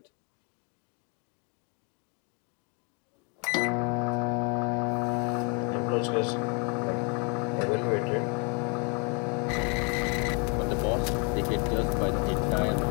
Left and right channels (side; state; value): right; quieter; 36.4 dB